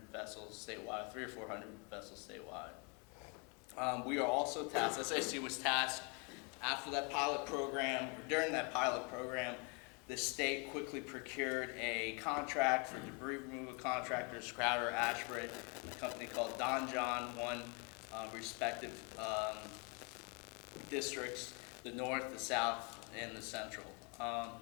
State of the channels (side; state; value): right; quieter; 33.5 dB